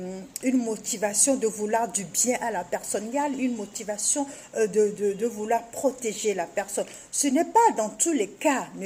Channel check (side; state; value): both; identical; correlation 1.00